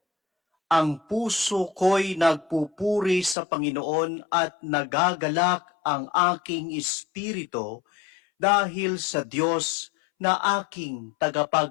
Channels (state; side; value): drops out; right; at 3.4 s